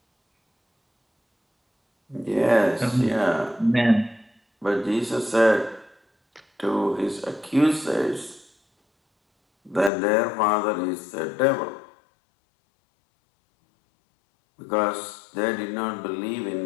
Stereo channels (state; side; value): drops out; right; at 9.9 s